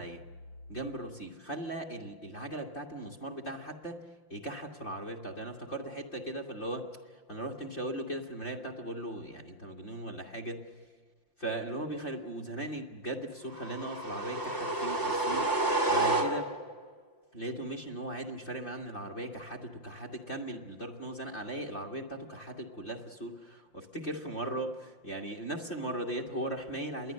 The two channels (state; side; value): late; right; 5.8 ms